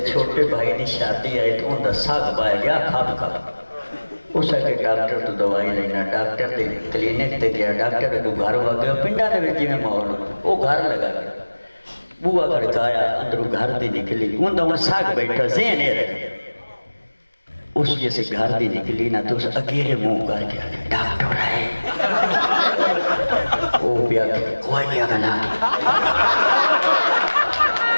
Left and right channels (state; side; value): inverted; both; correlation -1.00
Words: چھوٹے بھائی نے شادی آئی تو ان دا ساگ پایا گیا کھاب کھاب اس کے ڈاکٹر تو دوائی لینا ڈاکٹر دے کلینک تے گیا ڈاکٹر کو گھر ہوا گیا پنڈا دے جی میں ماحول وہ گھر لگا گیا بوا کھڑکایا اندروں گھر دی نکلی ان دا ان ساگ بیٹھا ذہن ہے رہے اس جیسے گھر دی نکلی نا تو اس اگیرے منہ کر گیا ڈاکٹر ہے وہ پیا کوئی نہیں اگلا